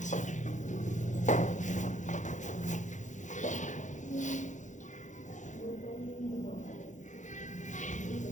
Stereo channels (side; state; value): right; late; 0.35 ms